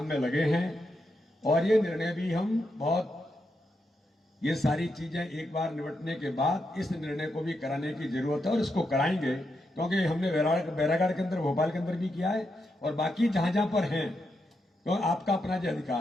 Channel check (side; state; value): both; normal; correlation 0.84